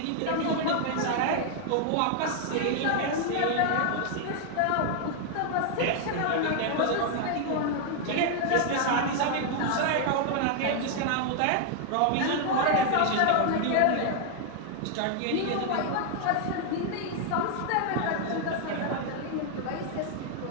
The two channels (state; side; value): different; both; correlation 0.00